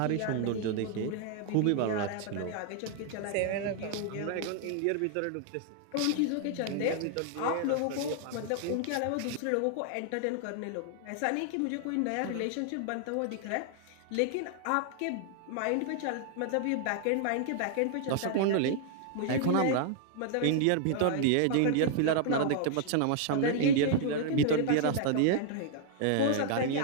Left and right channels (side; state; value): both; different; correlation 0.00